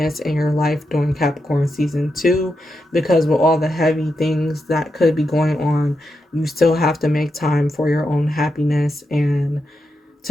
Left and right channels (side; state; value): both; normal; correlation 0.86